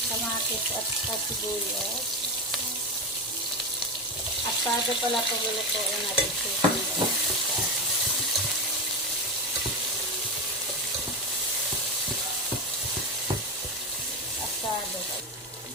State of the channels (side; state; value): both; normal; correlation 0.16